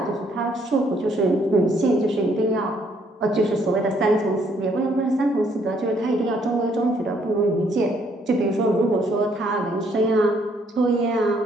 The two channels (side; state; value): both; normal; correlation 0.68